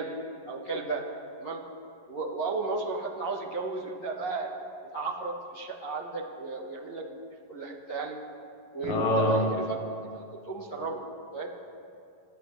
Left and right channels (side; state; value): right; late; 11 ms